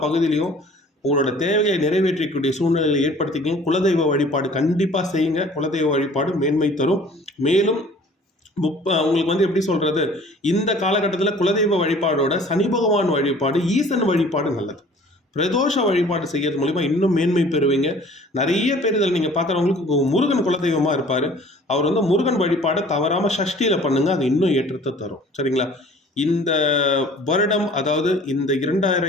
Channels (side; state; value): both; normal; correlation 0.50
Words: பகுதியிலையும் உங்களோட தேவையை நிறைவேற்றக்கூடிய சூழ்நிலையை ஏற்படுத்திக்கங்க. குலதெய்வ வழிபாடு கண்டிப்பாக செய்யுங்க. குலதெய்வ வழிபாடு மேன்மை தரும். மேலும் உங்களுக்கு எப்படி சொல்றது, இந்த காலகட்டத்தில் குலதெய்வ வழிபாடோட சனி பகவான் வழிபாடு, ஈசன் வழிபாடு நல்லது. பிரதோஷ வழிபாடு செய்யறது மூலிமா இன்னும் மேன்மை பெறுவீங்க. நிறைய பேர் இதில் நீங்கள் பார்க்குறவங்களுக்கு முருகன் குலதெய்வமாக இருப்பார். அவர் முருகன் வழிபாடை தவறாமல் சஷ்டியில் பண்ணுங்க, அது இன்னும் ஏற்றத்தை தரும். சரிங்களா, இந்த வருடம், அதாவது இந்த